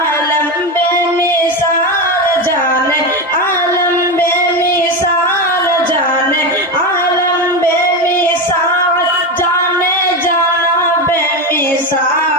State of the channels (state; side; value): normal; both; correlation 0.17